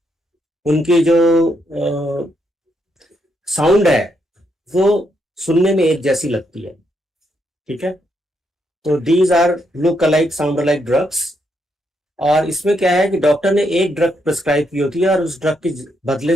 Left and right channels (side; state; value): both; normal; correlation 0.78